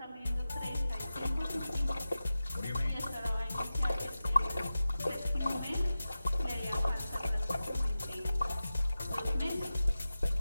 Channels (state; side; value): inverted; both; correlation -0.94